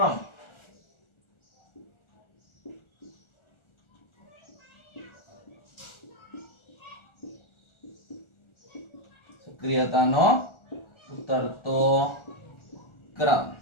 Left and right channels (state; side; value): late; right; 1.4 ms